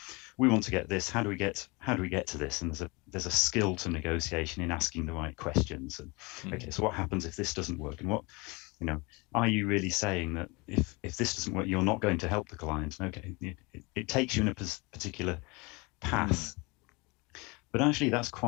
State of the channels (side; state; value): right; quieter; 26.9 dB